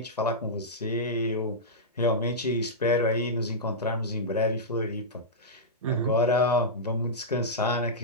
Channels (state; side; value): normal; both; correlation -0.11